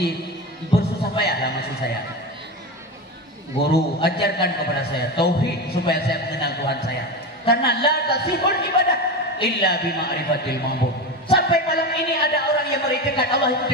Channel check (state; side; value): normal; both; correlation 0.21